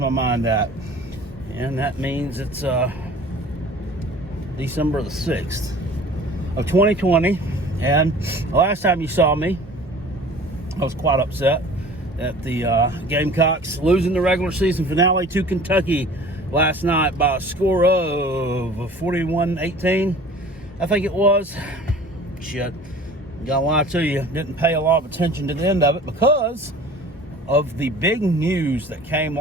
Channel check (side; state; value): both; normal; correlation 0.45